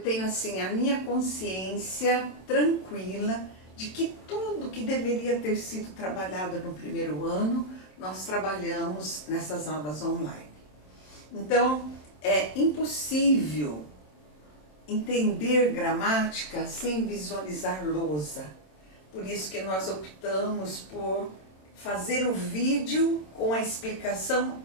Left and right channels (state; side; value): late; right; 27 ms